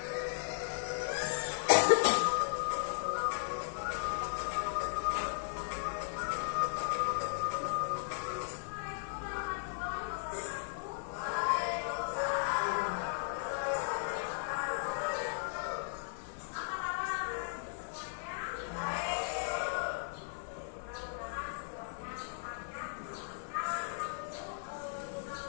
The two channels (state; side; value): silent; right; digital silence